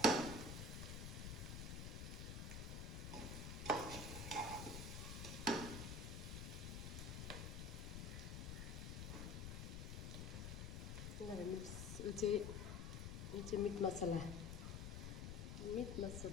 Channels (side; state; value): left; noise; rumble, 5 dB below the sound